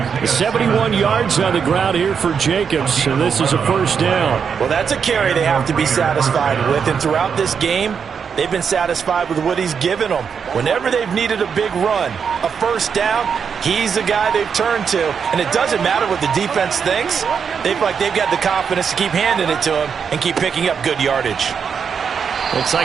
71 yards on the ground here for Jacobs, and this is a 1st down. Well, that's a carry they have to be satisfied with, and throughout this game, they've been satisfied with what he's given them. Whenever they've needed a big run, a 1st down, he's the guy they've turned to. And it doesn't matter what the defense thinks. They feel like they've got the confidence to keep handing it to him and keep picking up good yardage. Looks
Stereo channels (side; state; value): left; quieter; 6.6 dB